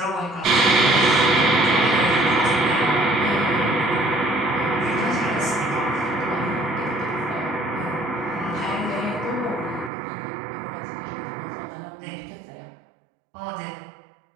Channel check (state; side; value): drops out; left; at 9.9 s